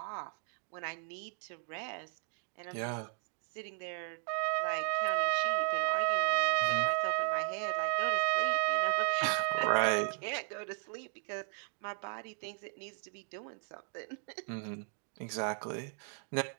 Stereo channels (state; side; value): silent; left; 54 dB below the other